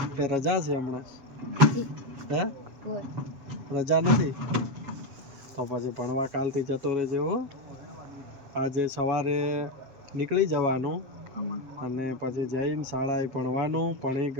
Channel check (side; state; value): left; late; 7.4 ms